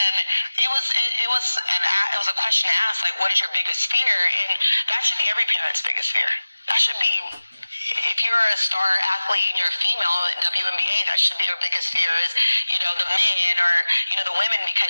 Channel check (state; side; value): inverted; both; correlation -0.97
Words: it was a question asked, like, what is your biggest fear? And that should be every parent's biggest fear. That should be, if you're a star athlete and you're a female in WNBA, that should be your biggest fear is, the men or, the women,